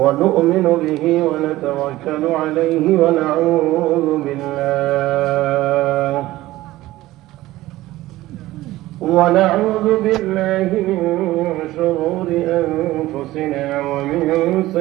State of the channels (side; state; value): left; quieter; 16.8 dB